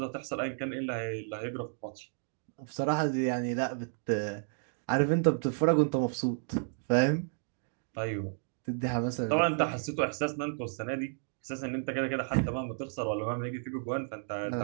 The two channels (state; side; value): silent; left; digital silence